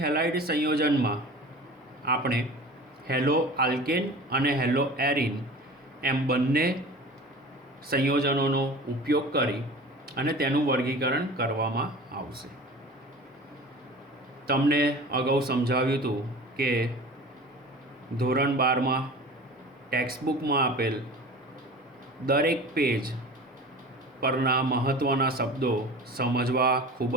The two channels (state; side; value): normal; both; correlation 0.38